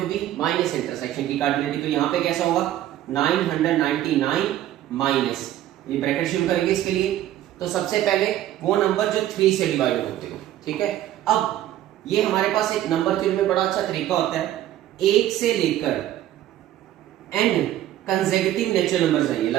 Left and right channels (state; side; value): quieter; left; 12.9 dB